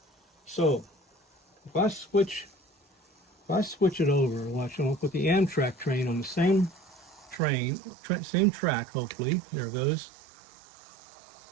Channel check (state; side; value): drops out; left; at 7.4 s